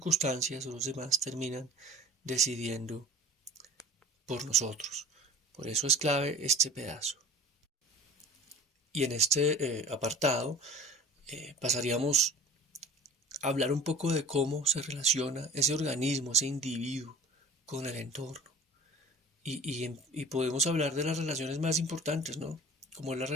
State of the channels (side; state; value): both; normal; correlation 0.43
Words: o los demás terminan decidiendo por nosotros. Por eso es clave este pedazo. Y en este apartado pasaríamos a hablar un poco de cómo se relaciona ese organismo, ese individuo con el entorno. Y podemos hablar de las relaciones más importantes, ¿no? Como es la